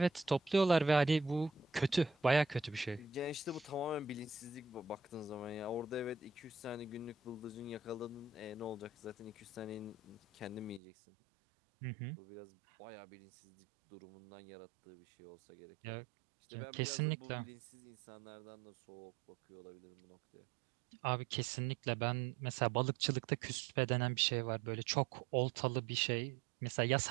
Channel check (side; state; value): left; drops out; at 10.8 s